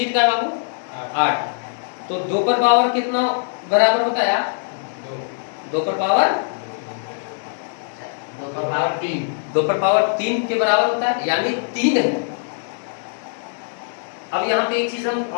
का है बाबू, 8। तो 2 पर पावर कितना बराबर होता है, 2 पर पावर 2 का पावर 3। 2 पर पावर 3 के बराबर होता है, यानी 3 है। अब यहाँ पे एक चीज हम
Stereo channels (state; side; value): silent; right; digital silence